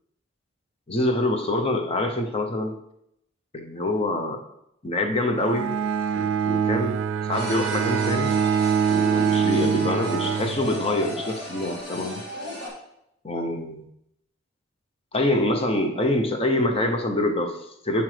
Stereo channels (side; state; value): both; normal; correlation 0.37